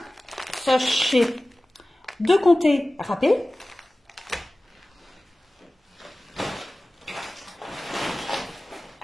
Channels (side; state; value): both; normal; correlation 0.97